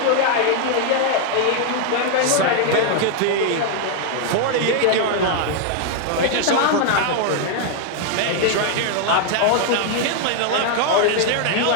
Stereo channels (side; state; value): both; different; correlation 0.00